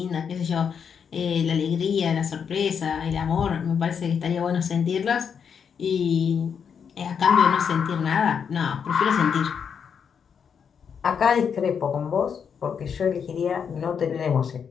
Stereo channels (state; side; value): quieter; right; 7.0 dB